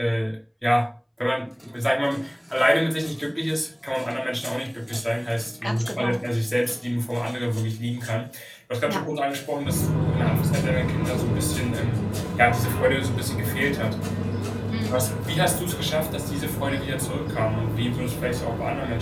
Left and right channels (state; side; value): identical; both; correlation 1.00